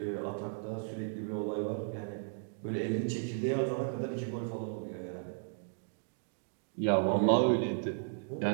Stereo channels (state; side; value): silent; left; digital silence